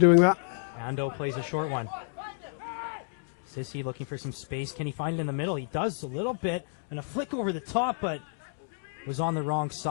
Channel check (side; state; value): right; silent; digital silence